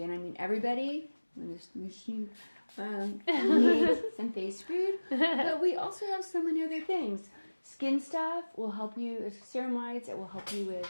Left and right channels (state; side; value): inverted; both; correlation -1.00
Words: and I mean everybody, needs some face food, but we also have so many other things. Skin stuff will help you, ceramides, it will help you with